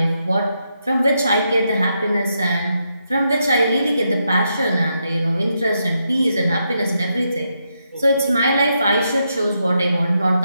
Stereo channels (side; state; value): both; inverted; correlation -0.81